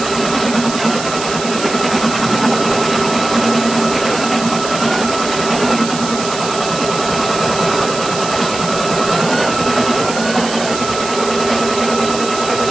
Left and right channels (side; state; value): right; noise; hiss, 8 dB below the sound